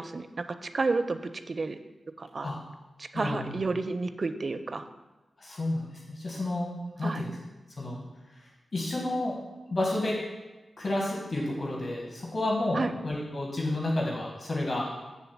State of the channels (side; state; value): both; normal; correlation 0.92